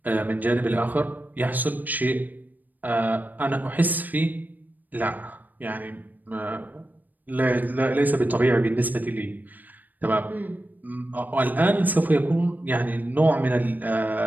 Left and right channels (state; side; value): late; left; 0.085 ms